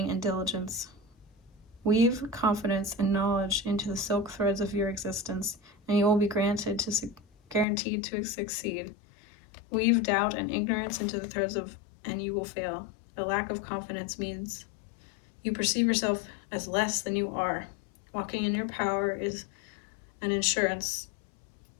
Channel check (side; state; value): right; drops out; at 7.7 s